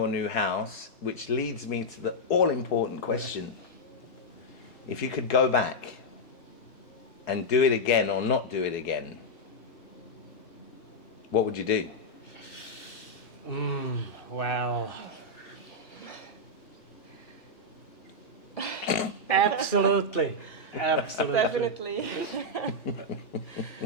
new house, which leads me to the all-important question. If you could go back and do it again or not do it again, what would you do? Well, absolutely. Definitely.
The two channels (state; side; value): late; right; 3.2 ms